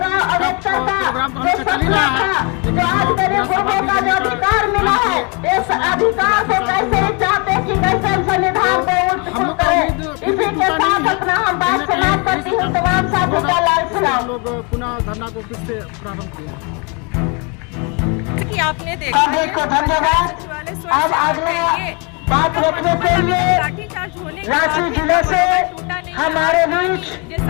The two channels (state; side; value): quieter; right; 32.5 dB